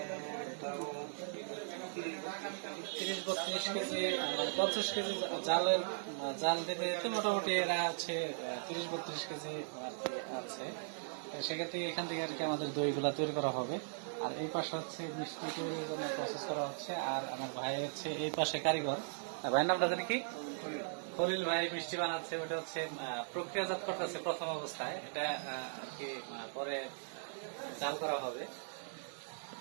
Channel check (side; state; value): left; silent; digital silence